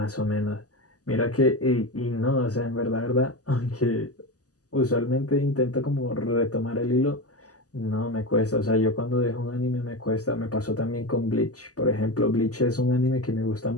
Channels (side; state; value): right; late; 0.67 ms